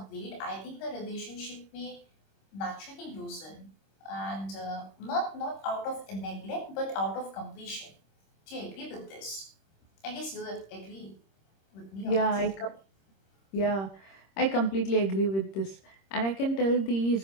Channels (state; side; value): late; right; 26 ms